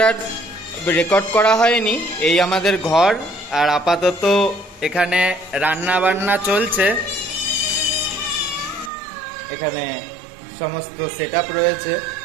আর রেকর্ড করা হয়নি, এই আমাদের ঘর। আর আপাতত এখানে রান্না বান্না চলছে, এখানে সমস্ত সেট আপ রয়েছে।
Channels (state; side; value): drops out; left; at 8.9 s